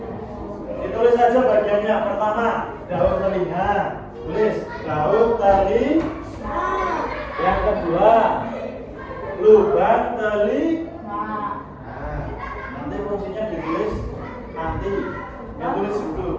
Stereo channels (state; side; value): identical; both; correlation 1.00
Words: Ditulis saja bagiannya. Pertama, daun telinga. Tulis daun telinga. Yang kedua, lubang telinga. Nah, nanti fungsinya ditulis nanti. Yang tulis